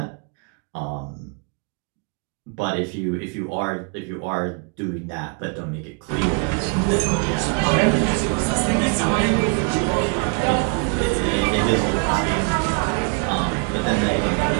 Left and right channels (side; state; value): left; quieter; 35.5 dB